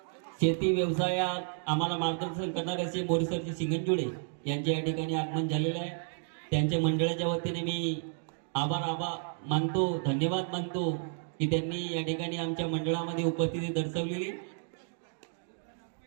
शेती व्यवसायात आम्हाला मार्गदर्शन करणारे असे मोरीसरचे सिंगनजुडे यांचे या ठिकाणी आगमन झालेले आहे. त्यांच्या मंडळाच्या वतीने मी आभार मानतो, धन्यवाद मानतो की त्यांनी या ठिकाणी आमच्या मंडळामध्ये उपस्थिती दर्शवलेली.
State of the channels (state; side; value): silent; left; 57 dB below the other